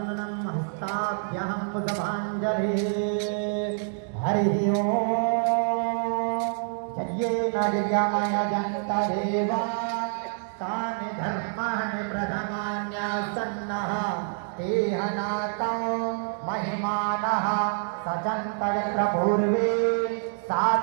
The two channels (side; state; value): left; silent; digital silence